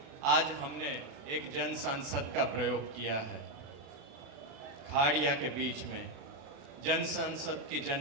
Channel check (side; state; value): left; late; 36 ms